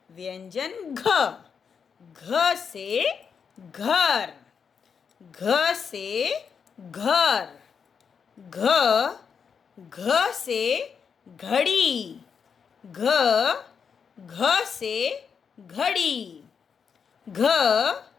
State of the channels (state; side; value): quieter; right; 6.5 dB